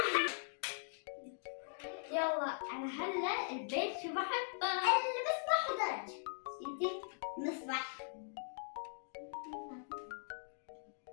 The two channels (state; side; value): silent; right; digital silence